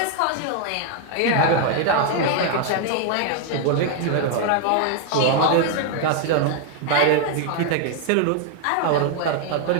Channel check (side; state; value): both; different; correlation 0.00